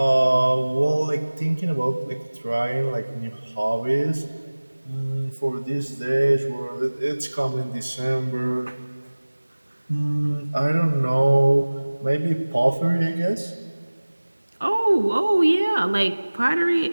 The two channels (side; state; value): both; inverted; correlation -1.00